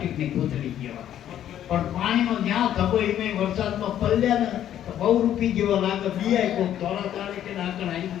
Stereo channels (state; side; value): quieter; right; 11.0 dB